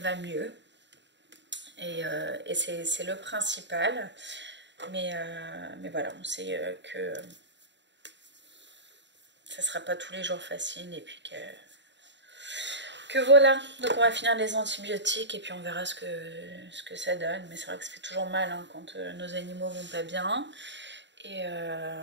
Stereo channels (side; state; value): left; late; 0.52 ms